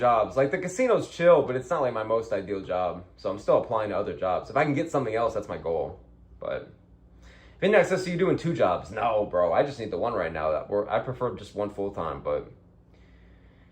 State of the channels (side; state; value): both; identical; correlation 1.00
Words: Like the casino's chill, but it's not like my most ideal job. So I'm still applying to other jobs. If I can get something else, that's my goal. But Vidnex says, so you doing 2 jobs? No, bro. I just need the one right now. I prefer just one full time, but